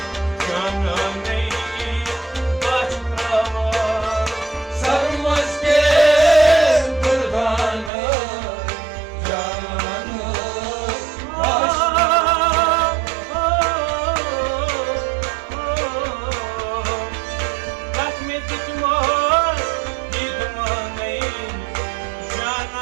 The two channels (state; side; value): drops out; left; at 7.9 s